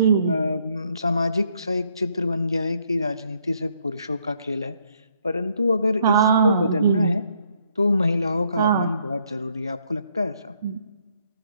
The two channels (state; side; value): inverted; both; correlation -0.70